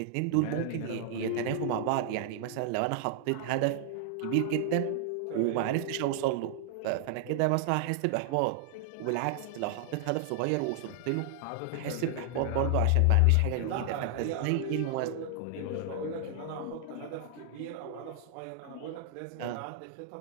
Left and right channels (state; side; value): different; both; correlation 0.00